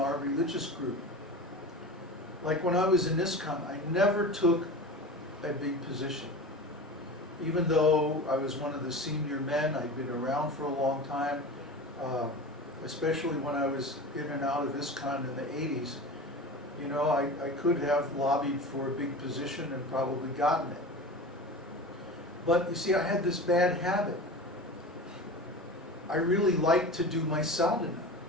religious group. Like when I was in ISKCON, I never took a big position. even though I was one of the senior men, I'd been around for a long time, especially when I was in and out of ISKCON in the 80s, you know, I could have lobbied for a big position and probably gotten it. But you see, I had this bad habit. I really liked to do my sadhana.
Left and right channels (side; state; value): both; normal; correlation 0.32